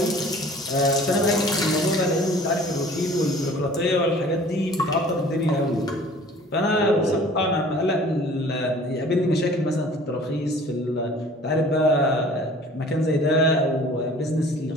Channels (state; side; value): normal; both; correlation 0.49